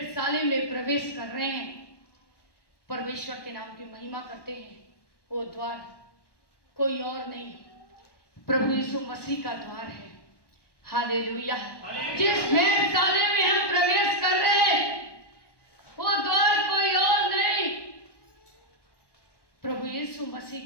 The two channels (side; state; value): right; late; 1.1 ms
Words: में प्रवेश कर रहे हैं, परमेश्वर के नाम की महिमा करते हैं। वो द्वार कोई और नहीं, प्रभु यीशु मसीह का द्वार है। हालेलुया। जिस वेधशाला में हम प्रवेश कर रहे हैं, वो द्वार कोई और नहीं, प्रभु यीशु